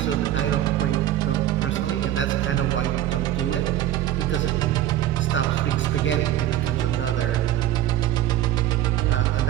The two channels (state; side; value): quieter; left; 12.6 dB